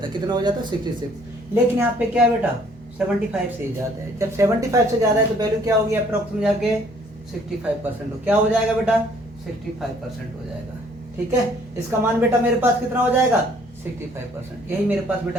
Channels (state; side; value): normal; both; correlation 0.60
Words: है, कितना हो जाता है, 66। लेकिन यहाँ पे क्या है बेटा, 75 से ही ज्यादा है। जब 75 से ज्यादा है तो वैल्यू क्या होगी, अप्रॉक्स में जाके 65% हो, क्या हो जाएगा बेटा, 65% हो जाएगा। ठीक है, इसका मान बेटा मेरे पास कितना हो जाएगा, 65%। यही मेरे पास